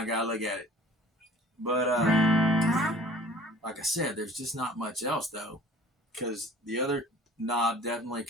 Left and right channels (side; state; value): both; normal; correlation 0.48